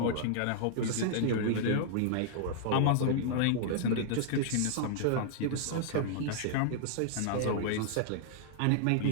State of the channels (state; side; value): different; both; correlation -0.01